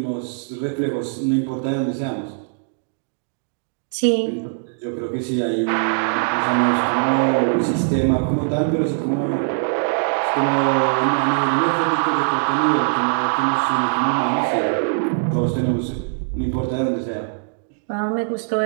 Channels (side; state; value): left; silent; digital silence